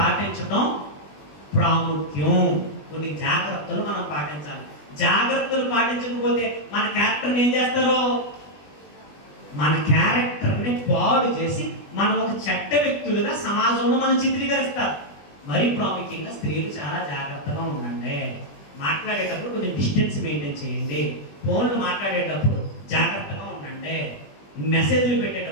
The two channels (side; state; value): right; late; 20 ms